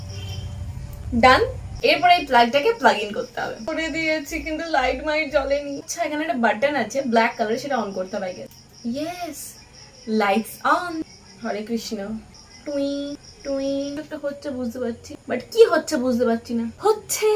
ডান। এরপরে এই প্লাগটাকে প্লাগ ইন করতে হবে। করে দিয়েছি কিন্তু লাইট মাইট জ্বলেনি। আচ্ছা এখানে একটা বাটন আছে ব্ল্যাক কালার, সেটা অন করতে হবে আগে। Yes, lights on. Hare Krishna. টুই টুই একটা হচ্ছে বুঝতে পারছি, বাট কি হচ্ছে বুঝতে পারছি না। হচ্ছে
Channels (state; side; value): identical; both; correlation 1.00